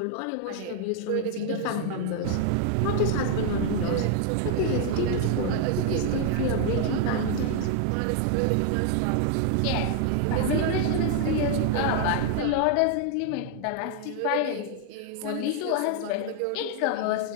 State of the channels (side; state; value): both; different; correlation 0.00